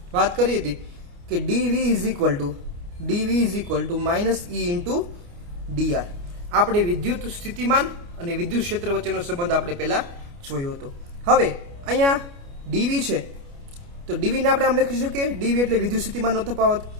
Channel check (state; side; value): late; left; 29 ms